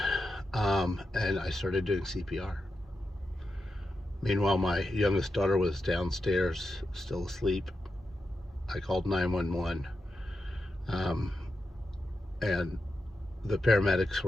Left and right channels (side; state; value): both; normal; correlation 0.87